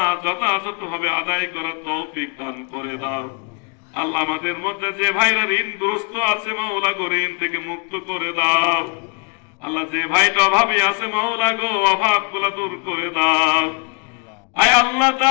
যথাযথভাবে আদায় করার তৌফিক দান করে দাও। আল্লাহ আমাদের মধ্যে যে ভাইরা ঋণগ্রস্ত আছে মাওলা গো, ঋণ থেকে মুক্ত করে দাও। আল্লাহ যে ভাইটা অভাবী আছে মাওলা গো, অভাবগুলো দূর করে দাও। আয় আল্লাহ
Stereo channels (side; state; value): right; quieter; 37.0 dB